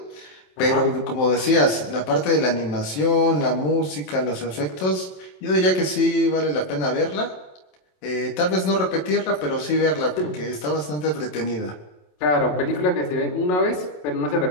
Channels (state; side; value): late; right; 27 ms